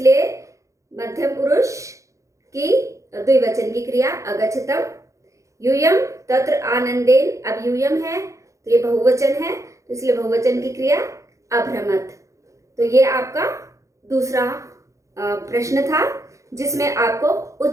मध्यम पुरुष की द्विवचन की क्रिया अगच्छतम। यूयम तत्र आनंदेन। अब यूयम है तो ये बहुवचन है, तो इसलिए बहुवचन की क्रिया अभ्रमत। तो ये आपका दूसरा प्रश्न था, जिसमें आपको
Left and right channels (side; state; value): left; late; 0.15 ms